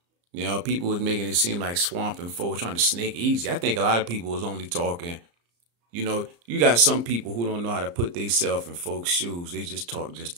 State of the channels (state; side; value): late; left; 34 ms